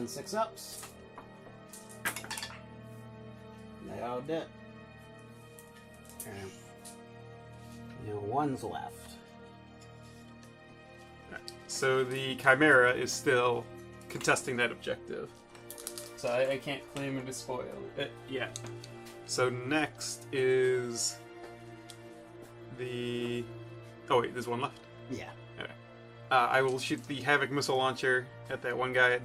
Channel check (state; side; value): identical; both; correlation 1.00